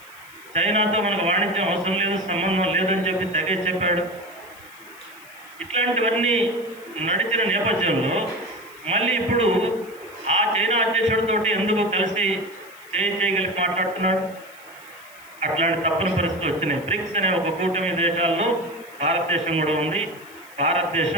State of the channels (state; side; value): noise; left; hiss, 24 dB below the sound